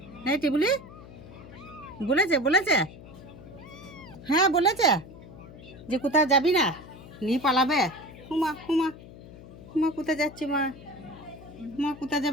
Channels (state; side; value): noise; left; hum, 17 dB below the sound